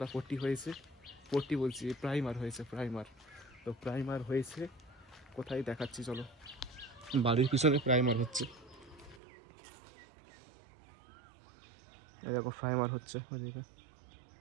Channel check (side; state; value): left; drops out; at 9.2 s